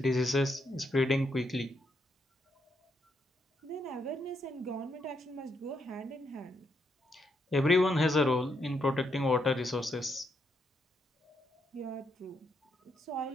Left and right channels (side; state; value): both; normal; correlation 0.78